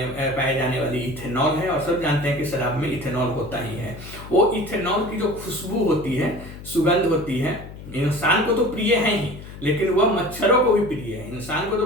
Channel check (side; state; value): left; noise; hum, 14 dB below the sound